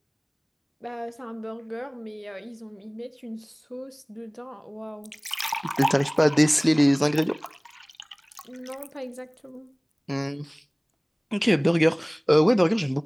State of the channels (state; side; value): identical; both; correlation 1.00